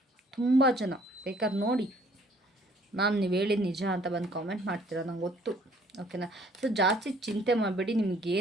ತುಂಬ ಜನ ಬೇಕಾದ್ರೆ ನೋಡಿ, ಮ್ಯಾಮ್ ನೀವು ಹೇಳಿದ ನಿಜ ಅಂತ ಬಂದು ಕಾಮೆಂಟ್ ಮಾಡ್ತೀರಾ, ನಂಗೆ ಗೊತ್ತು. ಓಕೆನಾ? ಸೊ ಜಾಸ್ತಿ ಚಿಂತೆ ಮಾಡಬೇಡಿ.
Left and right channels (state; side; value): normal; both; correlation 0.59